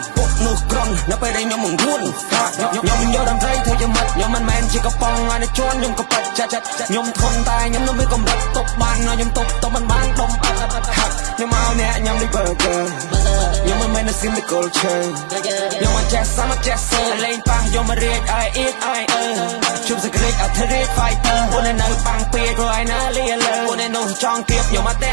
ពុកនោះក្រុននៅពេលដែលខ្ញុំមិនរួនខ្ញុំយកដំត្រីធ្វើជាមិត្តខ្ញុំមិនមែនជាកំប៉ុងឲ្យជន់ខ្ញុំក៏ប៉ិតចាត់ខ្ញុំធន់តែខ្ញុំនៅមានកម្រិតទប់បានខ្ញុំទប់មិនបានដុំហាត់ខ្ញុំមកអ្នកខ្ញុំនេះ burger ខ្ញុំមិនមែនស៊ីមទីកូលឈើខ្ញុំមិនចេះសាមចេះសើលេងប៉ាំងខ្ញុំរៀកឲ្យអៀតឲ្យជុំសក្តិអធិរិទ្ធ fighter ពួកនៅប៉ាំងពេកព្រោះឯណាលីលើពួកនៅនោះចង់គៀបខ្ញុំមកតា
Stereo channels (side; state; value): left; silent; 59 dB below the other